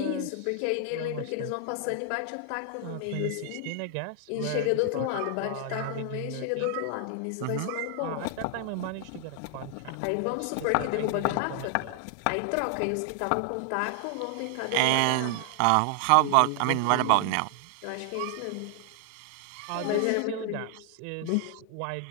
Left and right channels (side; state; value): both; different; correlation 0.00